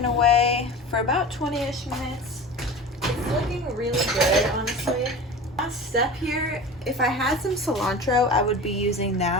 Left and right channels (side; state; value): both; normal; correlation 0.33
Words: away for about 20-ish minutes. It's looking really good, honestly. Last step here, if I had some cilantro, I would be using